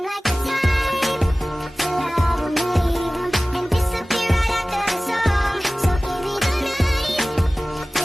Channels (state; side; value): normal; both; correlation 0.98